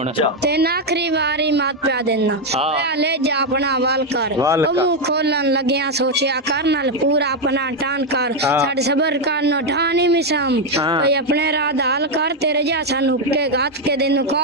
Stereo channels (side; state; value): both; normal; correlation 0.03